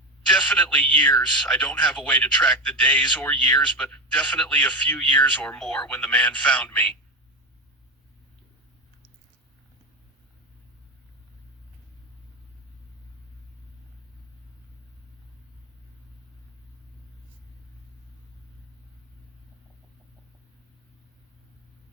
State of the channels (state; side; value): normal; both; correlation 0.17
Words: Definitely years. I don't have a way to track the days or years, but definitely a few years or more when the man found me.